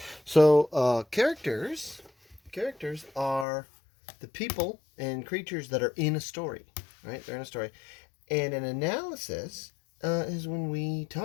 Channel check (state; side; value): drops out; right; at 3.5 s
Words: So characters are the people and creatures that are in a story, right? They're in a story. And an analysis is when we